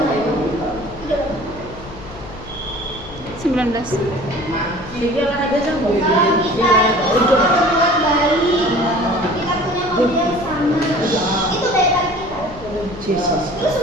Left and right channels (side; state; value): left; noise; hum, 17 dB below the sound